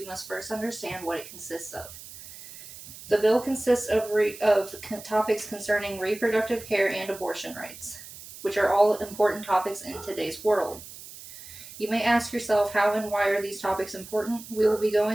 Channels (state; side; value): noise; right; hiss, 15 dB below the sound